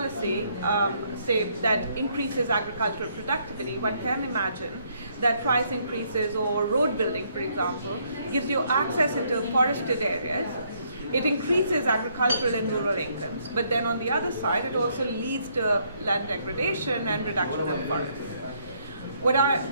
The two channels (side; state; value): both; inverted; correlation -0.70